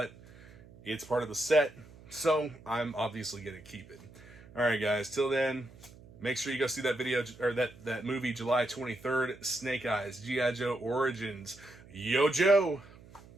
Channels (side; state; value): right; noise; hum, 22 dB below the sound